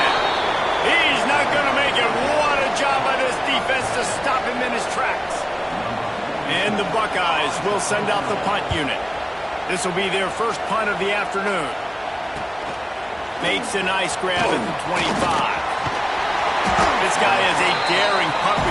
He's not going to make it. What a job by this defense to stop him in his tracks. And the Buckeyes will send out the punt unit. This will be their first punt of the afternoon. Makes a nice grab at the 25. This guy is a daring punt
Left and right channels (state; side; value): identical; both; correlation 1.00